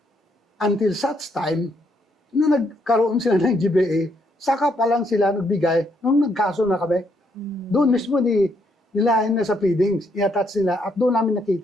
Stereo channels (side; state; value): both; normal; correlation 0.74